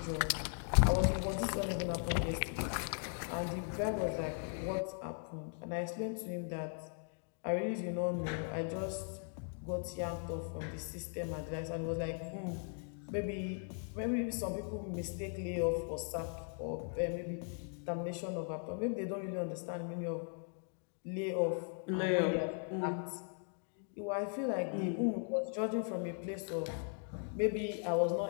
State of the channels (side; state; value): right; silent; 52 dB below the other